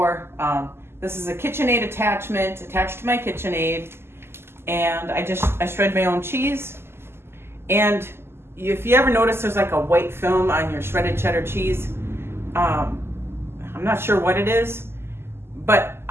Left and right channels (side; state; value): left; late; 0.12 ms